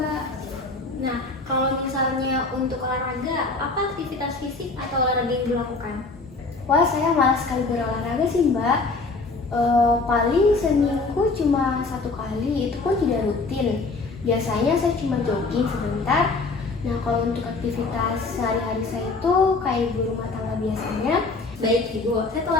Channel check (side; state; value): right; quieter; 3.7 dB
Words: Nah, kalau misalnya untuk olahraga, apa aktivitas fisik atau olahraga yang dilakukan? Wah, saya malas sekali berolahraga sih mbak. Paling seminggu cuma 1 kali, itu pun tidak rutin. Biasanya saya cuma jogging sebentar. Nah, kalau untuk aktivitas sehari-hari saya itu kayak ibu rumah tangga biasanya. Baik Ibu, saya